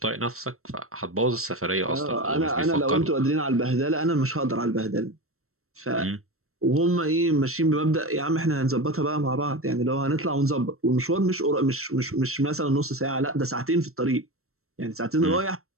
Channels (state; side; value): late; left; 0.63 ms